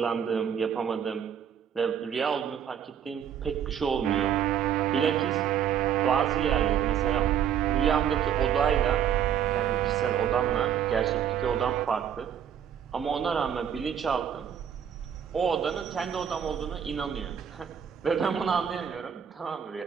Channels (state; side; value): quieter; left; 8.7 dB